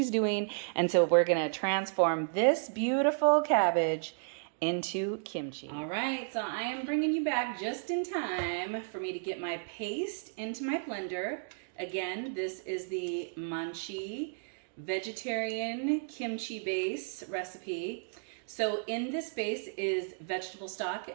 doing. And so we're going to transform this beautiful cabbage into kimchi. All right, so I am bringing you back just in time for me to get my paste into my blender. Again, this is the Maangchi vegetarian kimchi base recipe. So in this base is vegetable stock,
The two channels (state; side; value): silent; left; digital silence